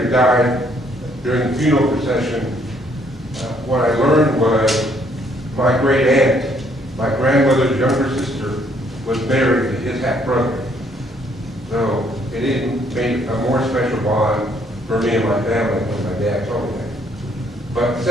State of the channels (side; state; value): both; normal; correlation 0.67